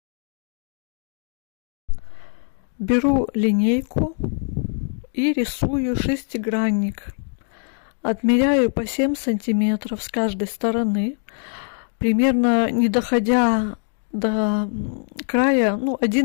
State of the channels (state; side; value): silent; right; 60 dB below the other